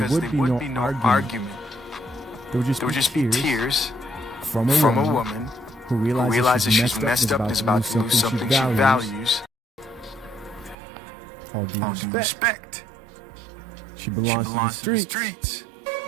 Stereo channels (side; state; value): left; drops out; at 10.8 s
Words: there would be no argument. There would just be tears from a woman who realizes she's messed up and is about to lose something she values. All due respect. She belongs to the streets.